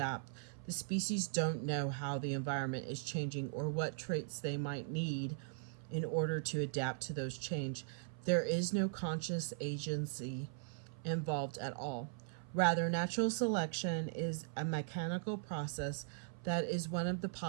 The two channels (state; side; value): silent; left; 51 dB below the other